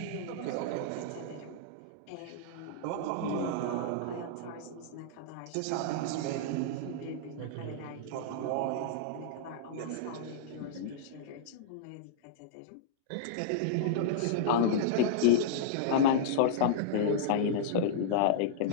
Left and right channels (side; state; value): both; different; correlation -0.02